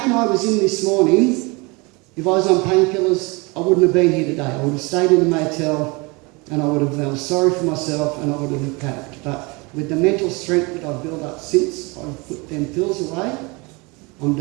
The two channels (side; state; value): left; quieter; 27.0 dB